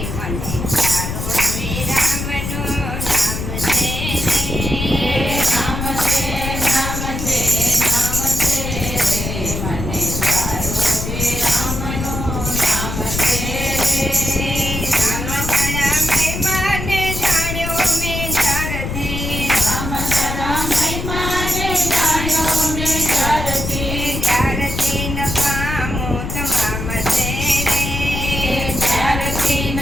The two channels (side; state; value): left; noise; rumble, 4 dB below the sound